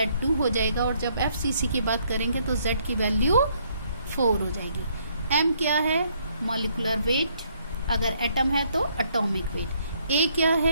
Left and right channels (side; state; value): both; inverted; correlation -0.69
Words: हो जाएगा, और जब FCC की बात करेंगे तो Z की वैल्यू 4 हो जाएगी। M क्या है? मॉलिक्यूलर वेट, अगर एटम है तो एटॉमिक वेट। A क्या